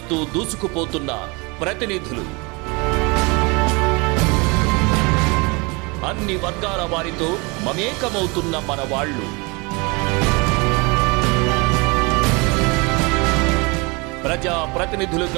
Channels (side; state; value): left; quieter; 28.2 dB